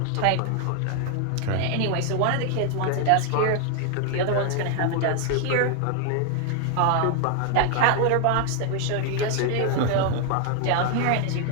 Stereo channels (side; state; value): both; different; correlation 0.00